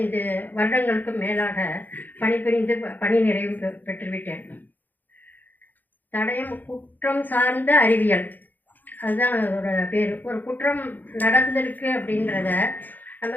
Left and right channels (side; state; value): right; late; 0.086 ms